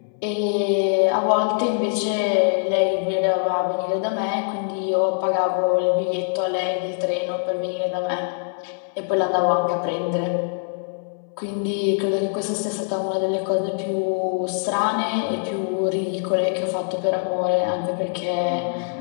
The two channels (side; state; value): right; silent; 63 dB below the other